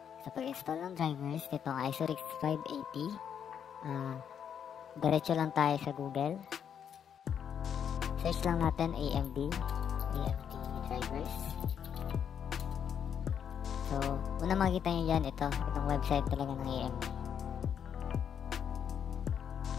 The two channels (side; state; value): right; quieter; 8.2 dB